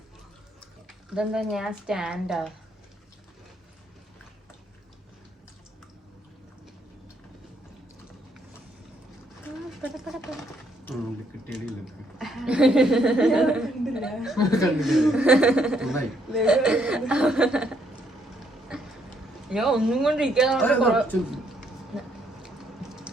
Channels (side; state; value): both; normal; correlation 0.71